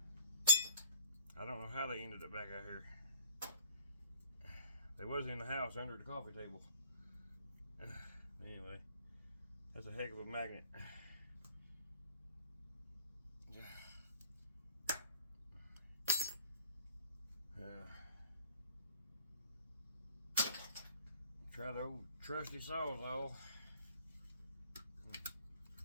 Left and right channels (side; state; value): both; inverted; correlation -0.50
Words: don't know how they ended up back out here. They was in the house under the coffee table. Anyway, that's a heck of a magnet. Try the old trusty Sawzall.